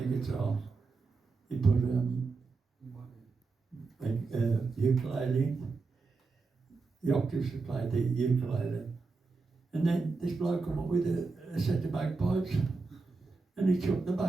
guitar. He put ukulele in. The octopus would play the ukulele. And then this bloke come up with a set of bagpipes, and he chucked the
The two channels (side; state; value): left; quieter; 4.1 dB